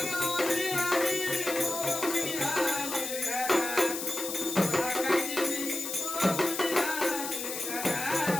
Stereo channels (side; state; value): left; noise; hiss, 5 dB below the sound